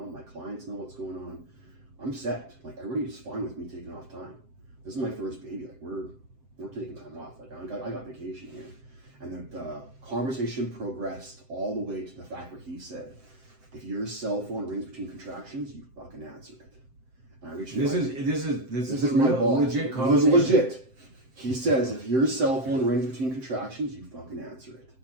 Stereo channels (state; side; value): late; left; 7.7 ms